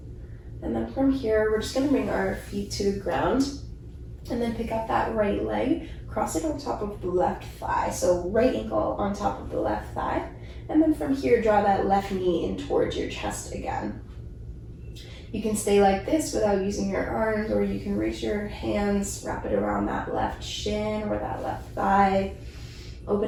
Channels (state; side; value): identical; both; correlation 1.00